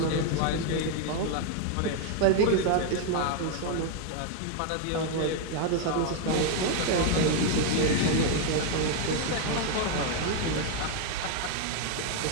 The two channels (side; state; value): both; different; correlation 0.01